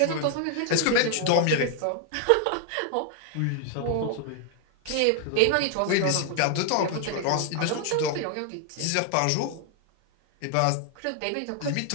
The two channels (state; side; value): different; both; correlation 0.00